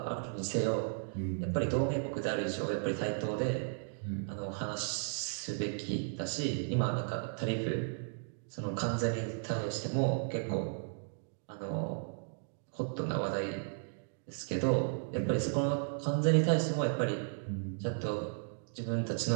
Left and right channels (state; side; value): silent; left; digital silence